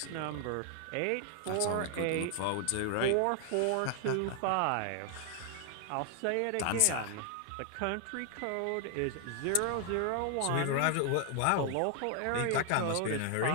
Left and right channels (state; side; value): different; both; correlation 0.00